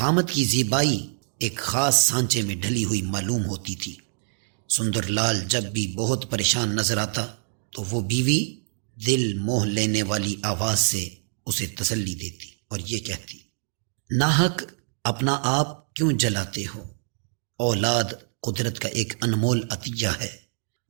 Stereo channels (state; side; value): silent; left; digital silence